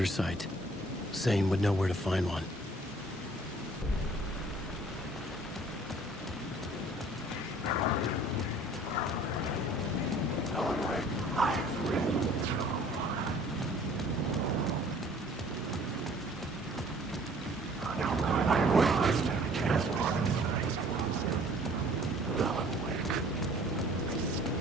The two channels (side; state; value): both; normal; correlation 0.54